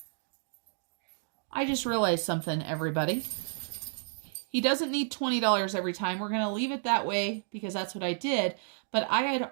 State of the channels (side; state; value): left; silent; digital silence